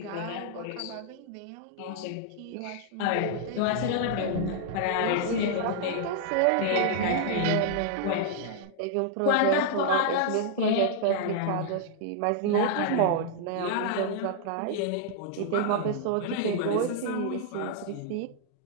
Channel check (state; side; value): different; both; correlation -0.01